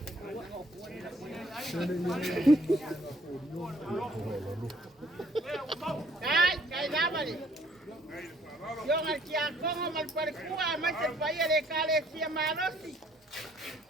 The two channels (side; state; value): both; normal; correlation 0.62